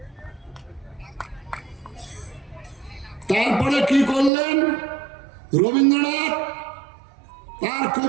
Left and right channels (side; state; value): left; drops out; at 4.3 s